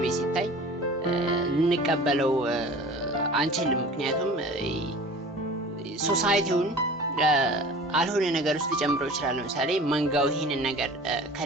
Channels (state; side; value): normal; both; correlation 0.41